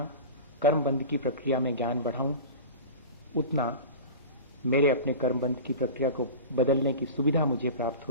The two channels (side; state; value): both; inverted; correlation -0.32